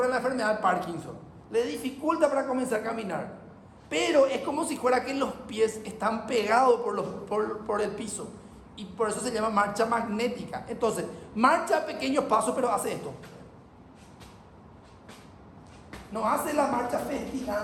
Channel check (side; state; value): both; identical; correlation 1.00